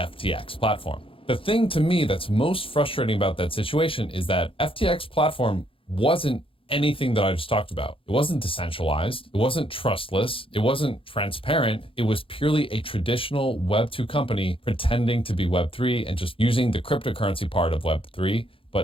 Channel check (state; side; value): late; right; 0.26 ms